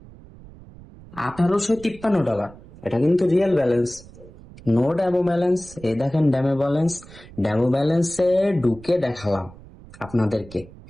$1853। এটা কিন্তু real balance, no demo balance. এই দেখেন ড্যামো ব্যালেন্স। ড্যামো ব্যালেন্সে ঢুকে দেখালাম আপনাদেরকে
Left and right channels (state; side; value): noise; right; rumble, 20 dB below the sound